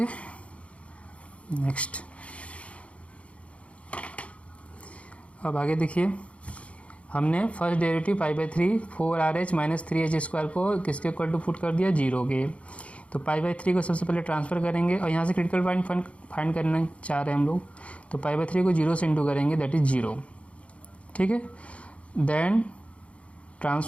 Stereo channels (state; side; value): late; right; 0.062 ms